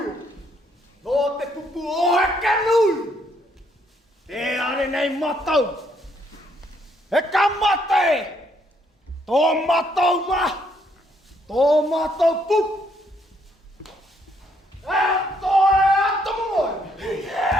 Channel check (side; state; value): both; normal; correlation 0.71